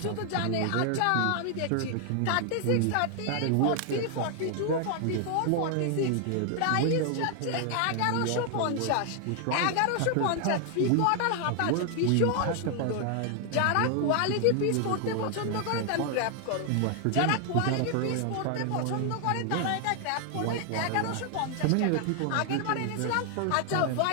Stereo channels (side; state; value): both; different; correlation 0.00